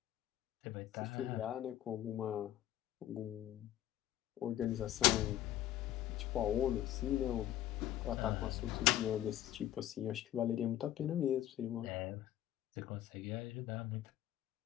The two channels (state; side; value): quieter; right; 12.9 dB